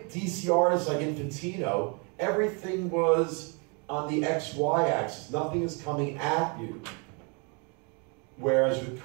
DC artists like Infantino, everything was on the XY axis. Nothing is coming at you. Whereas with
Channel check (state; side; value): quieter; left; 34.9 dB